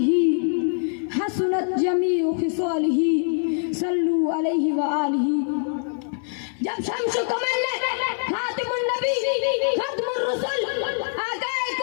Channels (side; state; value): right; silent; 63 dB below the other